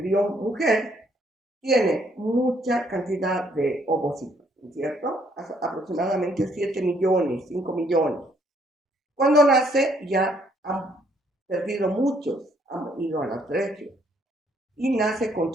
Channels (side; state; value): both; normal; correlation 0.68